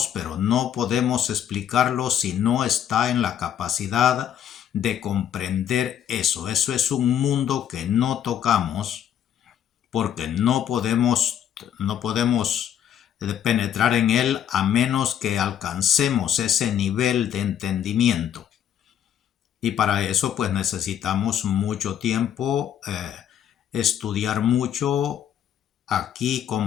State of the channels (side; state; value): right; quieter; 9.8 dB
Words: pero no podemos explicarlo si no está en la capacidad de comprender eso. Eso es un mundo que no tocamos porque no podemos penetrar en él a menos que alcancemos ese nivel de entendimiento. Y para eso pues necesitamos mucho tiempo, estudiar mucho. Aquí